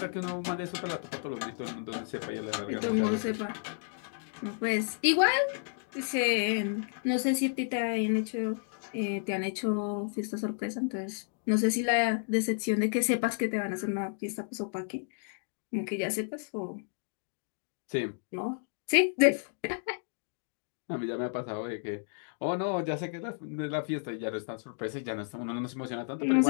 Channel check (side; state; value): right; silent; digital silence